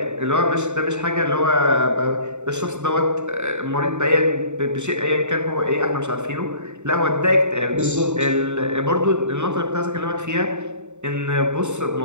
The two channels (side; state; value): left; late; 0.84 ms